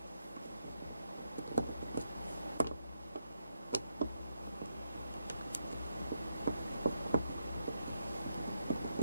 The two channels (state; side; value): inverted; both; correlation -0.80